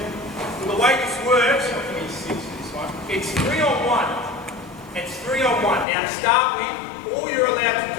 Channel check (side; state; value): right; drops out; at 5.9 s